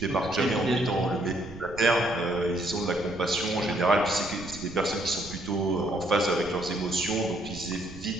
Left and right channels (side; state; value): right; noise; rumble, 15 dB below the sound